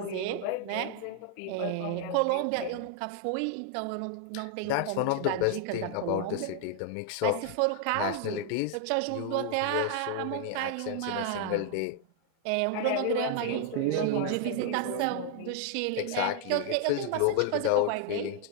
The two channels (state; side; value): different; both; correlation 0.00